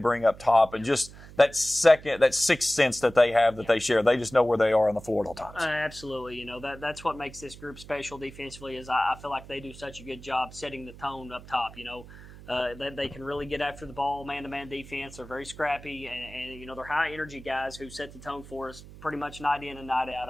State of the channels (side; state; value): right; noise; hum, 17 dB below the sound